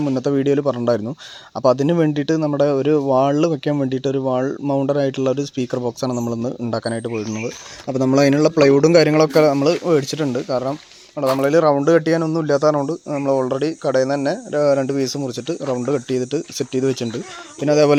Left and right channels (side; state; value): both; identical; correlation 1.00